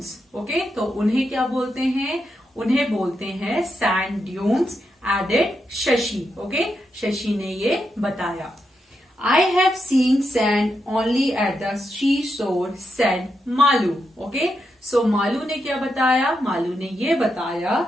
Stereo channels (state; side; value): normal; both; correlation 0.84